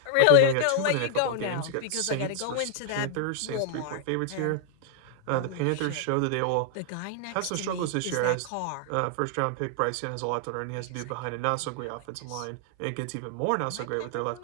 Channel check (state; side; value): different; both; correlation 0.00